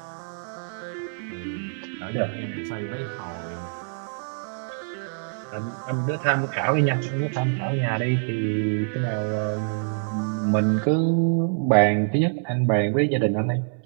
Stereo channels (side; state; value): left; silent; 61 dB below the other